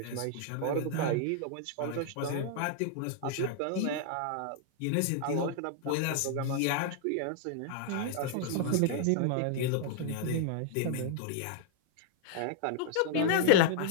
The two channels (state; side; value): different; both; correlation -0.01